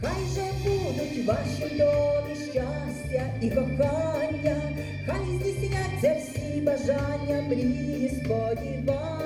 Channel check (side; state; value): both; identical; correlation 1.00